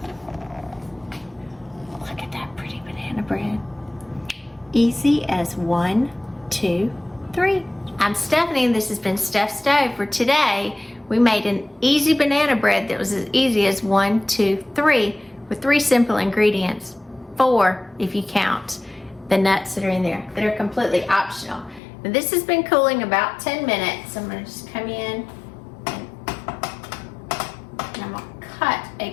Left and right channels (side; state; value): right; drops out; at 21.8 s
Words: Look at that pretty banana bread. Easy as 1, 2, 3. I'm Stephanie, and this has been Steph Stove. For today, we made an easy banana bread that was as easy as 1, 2, 3 with 3 simple ingredients. 4 if you count the nuts that are in there that are completely optional. Now, this has been cooling about 10 minutes. I'm going to just come in and I'm going to cut